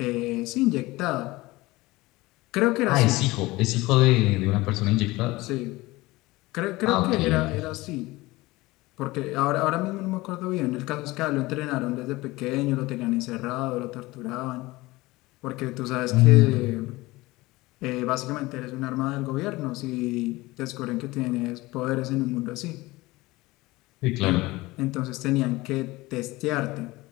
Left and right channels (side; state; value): right; quieter; 20.5 dB